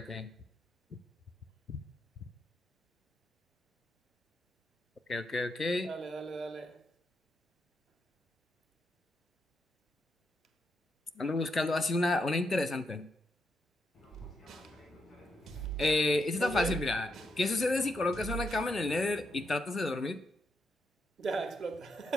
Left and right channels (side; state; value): both; normal; correlation 0.82